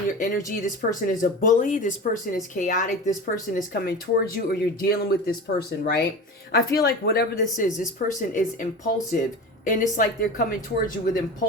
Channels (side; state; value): both; normal; correlation 0.31